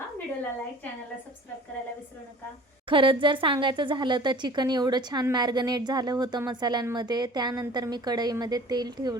व्हिडिओला लाईक, चॅनलला सबस्क्राईब करायला विसरू नका. खरंच जर सांगायचं झालं तर चिकन एवढं छान मॅरिनेट झालं होतं मसाल्यांमध्ये. त्यानंतर मी कढईमध्ये तेल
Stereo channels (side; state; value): both; normal; correlation 0.45